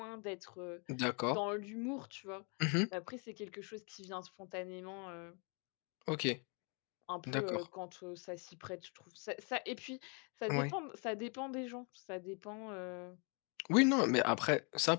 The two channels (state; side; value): quieter; right; 35.8 dB